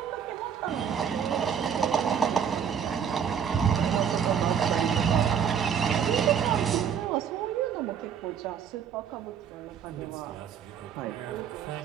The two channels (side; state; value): left; quieter; 7.8 dB